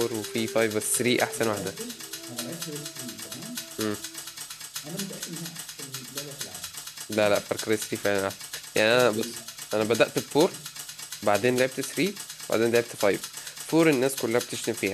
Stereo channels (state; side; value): identical; both; correlation 1.00